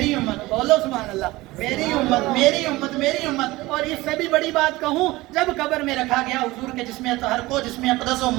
امت، بولو سبحان اللہ، میری امت میری امت میری امت. اور اس سے بھی بڑی بات کہوں، جب قبر میں رکھا گیا حضور کے جسم اطہر کو، جسم اقدس و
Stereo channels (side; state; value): left; quieter; 19.7 dB